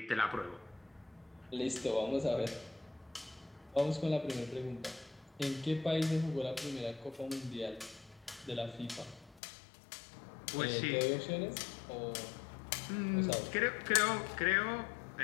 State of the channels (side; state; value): right; drops out; at 9.4 s